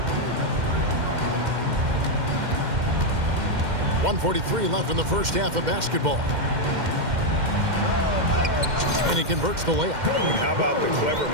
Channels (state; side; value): late; left; 2.1 ms